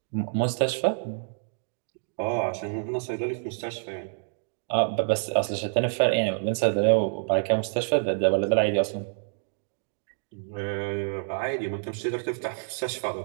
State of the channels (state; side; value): silent; left; digital silence